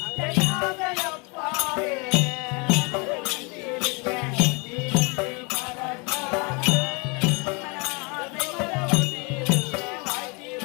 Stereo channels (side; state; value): right; quieter; 30.9 dB